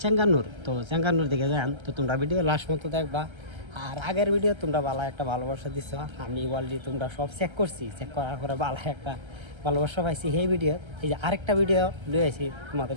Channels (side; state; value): left; late; 1.3 ms